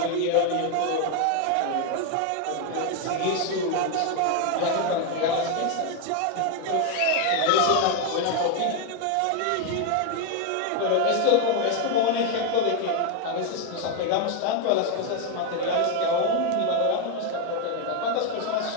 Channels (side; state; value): both; different; correlation 0.01